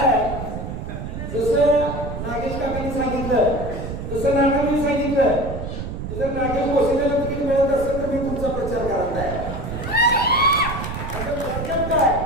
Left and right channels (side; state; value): right; noise; rumble, 6 dB below the sound